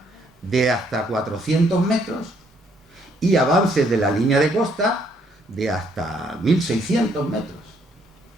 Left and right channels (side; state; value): both; normal; correlation 0.69